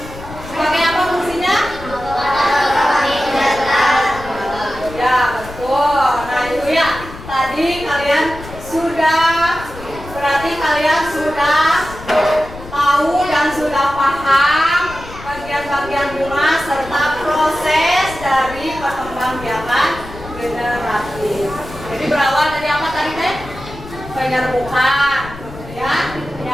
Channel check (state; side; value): noise; left; rumble, 14 dB below the sound